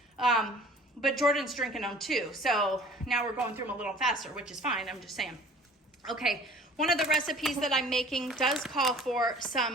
But Jordan's drinking them too. So now we're going through them a little faster, which is fine. I'm just saying. Okay, one of the recipes that I'm making does call for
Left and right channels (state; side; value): normal; both; correlation 0.48